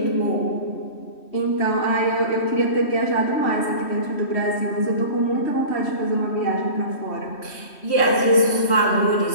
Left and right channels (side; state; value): right; late; 3.1 ms